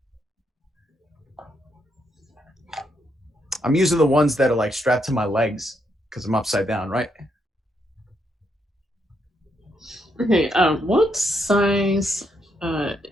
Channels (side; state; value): both; normal; correlation 0.77